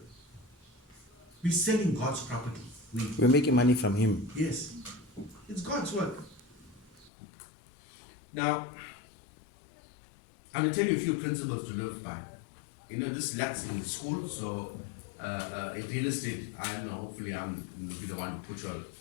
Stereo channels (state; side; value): drops out; right; at 7.1 s